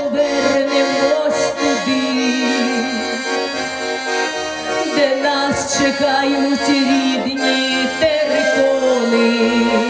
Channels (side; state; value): both; identical; correlation 1.00